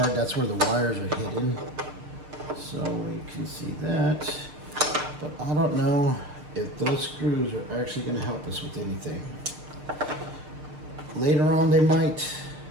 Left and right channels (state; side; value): late; left; 6.6 ms